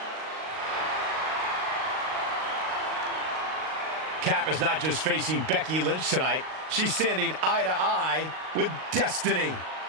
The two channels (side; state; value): left; late; 38 ms